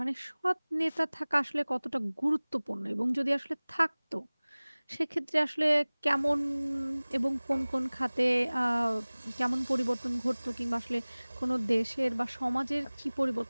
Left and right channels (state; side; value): inverted; both; correlation -1.00